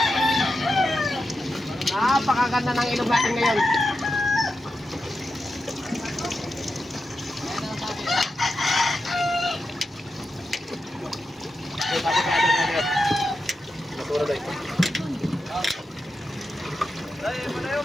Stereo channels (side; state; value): both; normal; correlation 0.89